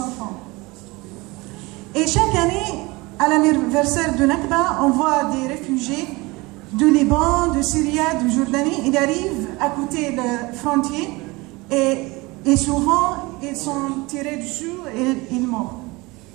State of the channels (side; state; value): left; quieter; 23.6 dB